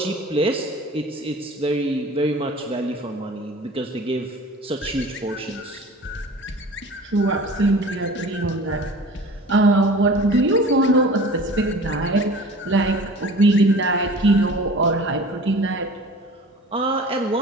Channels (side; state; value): both; normal; correlation 0.41